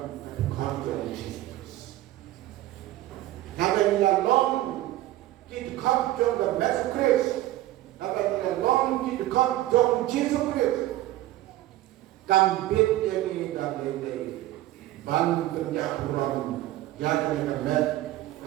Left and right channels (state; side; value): quieter; left; 15.4 dB